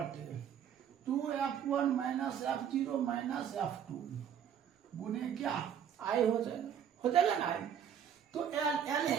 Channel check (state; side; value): quieter; left; 8.8 dB